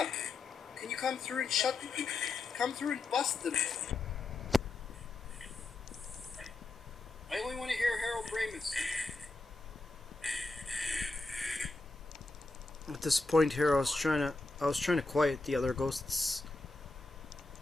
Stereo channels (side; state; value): right; quieter; 3.3 dB